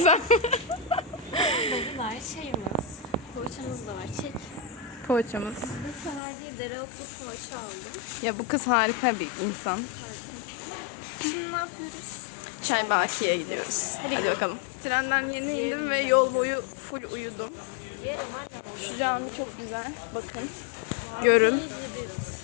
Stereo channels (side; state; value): right; drops out; at 6.2 s